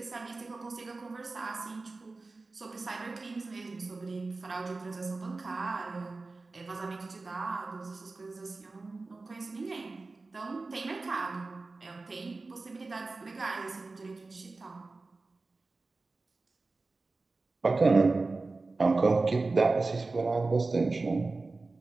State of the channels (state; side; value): quieter; left; 3.6 dB